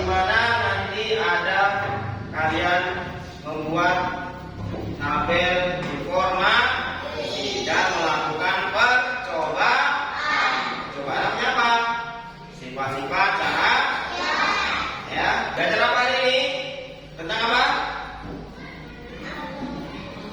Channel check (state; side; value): identical; both; correlation 1.00